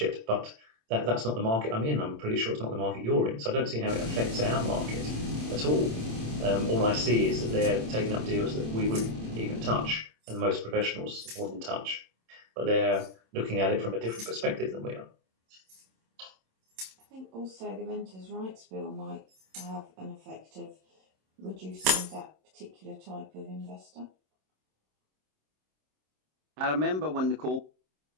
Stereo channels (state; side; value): late; left; 27 ms